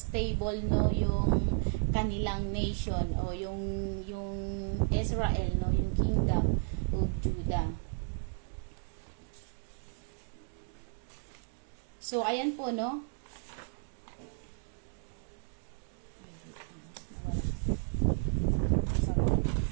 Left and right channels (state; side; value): silent; left; 55 dB below the other